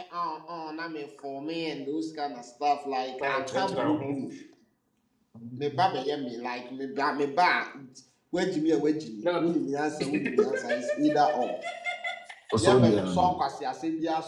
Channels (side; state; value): both; identical; correlation 1.00